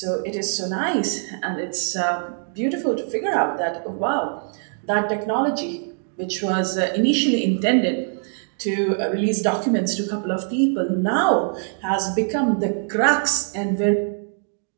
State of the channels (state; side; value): silent; left; 63 dB below the other